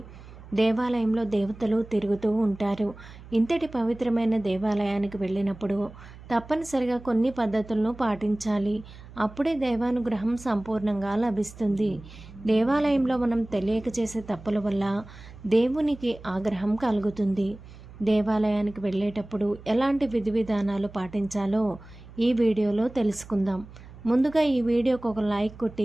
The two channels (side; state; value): right; noise; hum, 18 dB below the sound